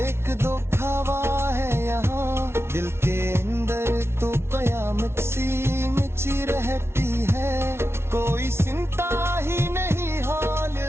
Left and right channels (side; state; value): left; late; 0.12 ms